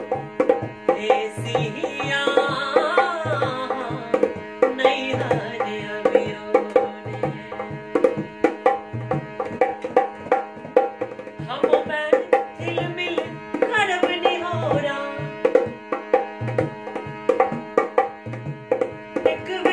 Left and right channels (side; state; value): both; identical; correlation 1.00